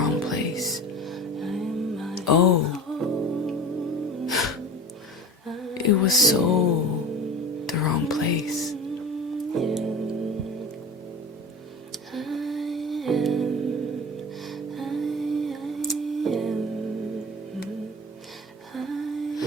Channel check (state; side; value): normal; both; correlation 0.33